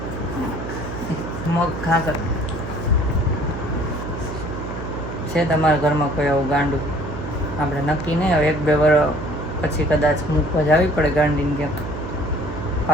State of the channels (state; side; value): noise; right; hum, 8 dB below the sound